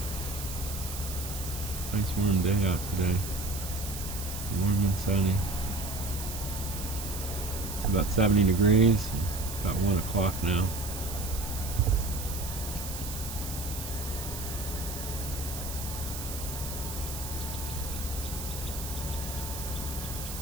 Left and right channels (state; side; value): noise; right; hiss, 8 dB below the sound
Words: Nice warm day out today. Warm and sunny. It's about 70 degrees. About 1 o'clock now.